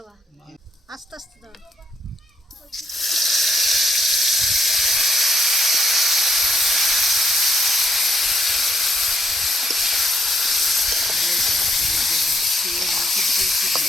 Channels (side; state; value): both; normal; correlation 0.76